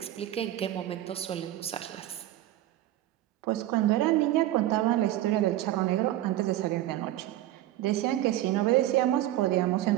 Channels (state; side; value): quieter; left; 14.1 dB